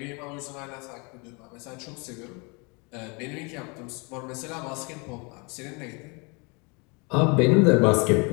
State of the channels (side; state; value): right; quieter; 30.9 dB